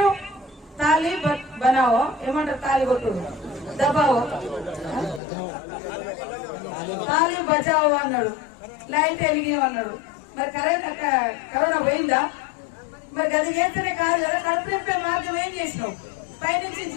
తాళి బనావో, ఏమంటారు, తాళి కొట్టుడు, దబావో, తాళి బచావో అన్నాడు, లైట్ వెలిగినవన్నాడు. మరి కరోనా పోయిందా? మరి గది చేస్తేనే కాదు కదా. కడుపు నింపే మార్గం ఏం చేసినావు? పైనుంచి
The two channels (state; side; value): drops out; right; at 5.2 s